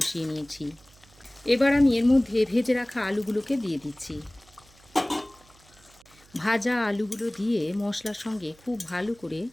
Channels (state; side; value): noise; right; hum, 27 dB below the sound